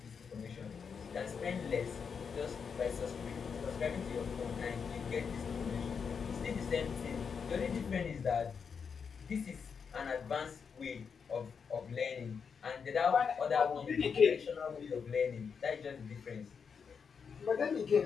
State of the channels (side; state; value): right; quieter; 6.2 dB